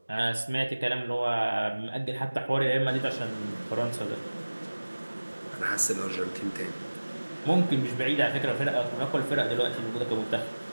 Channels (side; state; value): both; inverted; correlation -1.00